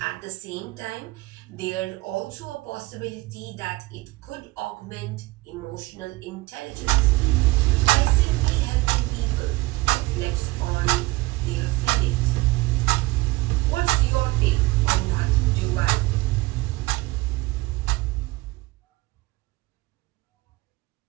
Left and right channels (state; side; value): quieter; left; 21.3 dB